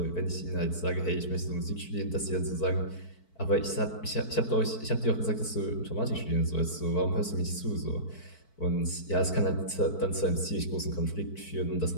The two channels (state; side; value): late; right; 4.5 ms